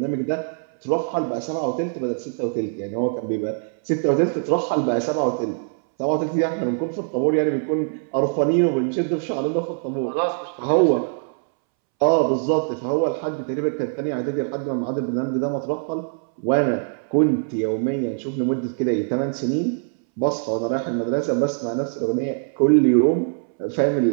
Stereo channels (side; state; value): left; silent; 64 dB below the other